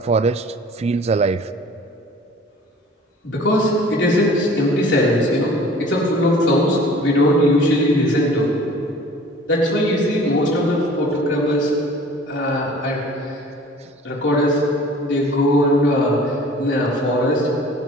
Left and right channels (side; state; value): both; normal; correlation 0.47